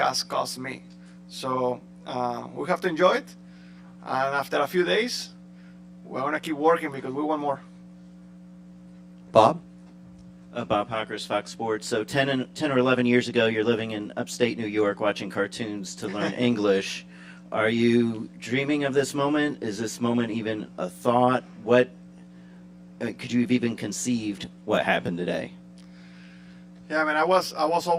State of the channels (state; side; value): identical; both; correlation 1.00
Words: cost me. So we have to enjoy it, and after a few days, we're gonna keep working because we want more. Bob? Bob Hockers, Fox Sports. So 10 or 11 years ago, you're living in upstate New York watching cartoons to learn English. Are you dreaming of this moment? Is this moment even a thought? What could you have even conceived what happened today? Yeah, I mean, I was